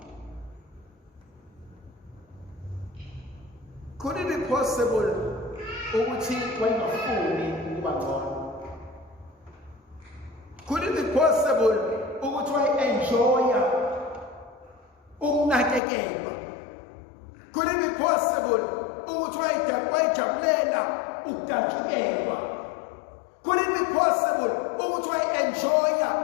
Could it be possible ukuthi wayengafuni ukuba ngcono? Could it be possible ukuthi wayenjoya ukunakekelwa? Could it be possible ukuthi wayejabulela ukudatshukelwa? Could it be possible ukuthi wayenjoya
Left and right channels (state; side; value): drops out; right; at 15.8 s